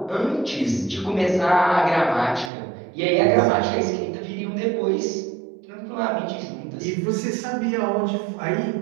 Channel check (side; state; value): left; drops out; at 2.5 s